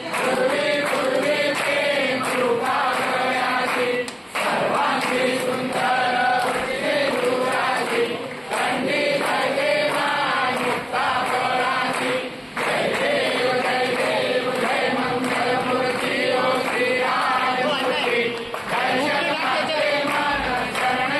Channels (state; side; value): identical; both; correlation 1.00